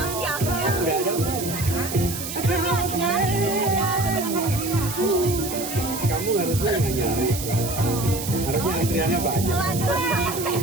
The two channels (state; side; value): noise; right; hiss, 7 dB below the sound